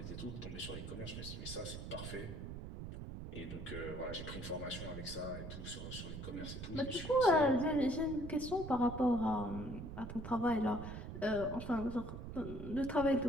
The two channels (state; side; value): noise; right; rumble, 8 dB below the sound